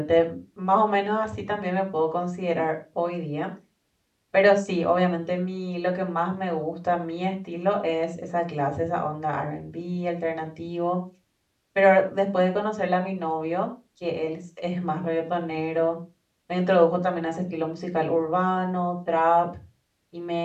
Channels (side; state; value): both; identical; correlation 1.00